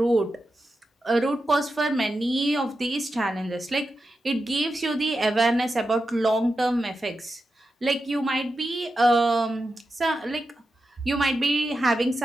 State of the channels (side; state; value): both; normal; correlation 0.90